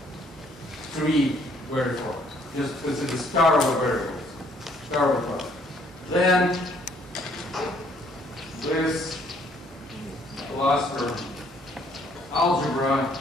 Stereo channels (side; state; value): both; normal; correlation 0.64